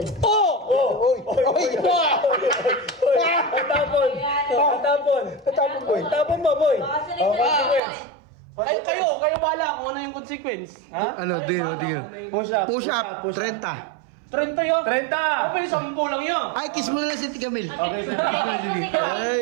Oy! Tatapon, boy. Tapon mo, boy. Consequence. Ay, kayo bala kung ano yung consequence. Ano, tingin. Push up. 30. 30 yun? 30! Kapag 10 lang yun. Ay, kiss mo na lang si Camille. Okay, kiss mo na Lili.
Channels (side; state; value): left; drops out; at 7.8 s